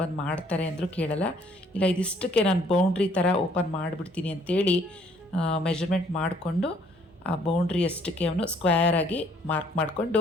ಬಂದು ಮಾಡ್ತಾರೆ ಅಂದರೂ ಕೇಳಲ್ಲ. ಇಲ್ಲ, ಇದಿಷ್ಟಕ್ಕೆ ನಾನು ಬೌಂಡ್ರಿ ಥರ ಓಪನ್ ಮಾಡಿಬಿಡ್ತೀನಿ ಅಂಥೇಳಿ ಮೆಜರ್ಮೆಂಟ್ ಮಾಡಿಕೊಂಡು ಆ ಬೌಂಡ್ರಿ ಅಷ್ಟಕ್ಕೆ ಅವನು ಸ್ಕ್ವೇರಾಗಿ ಮಾರ್ಕ್ ಮಾಡಿಕೊಂಡು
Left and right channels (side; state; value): both; normal; correlation 0.62